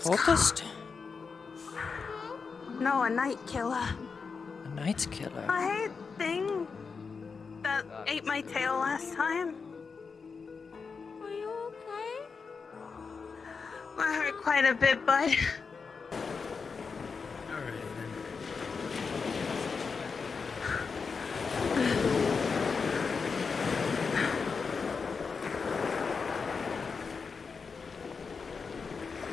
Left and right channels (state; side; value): quieter; right; 5.2 dB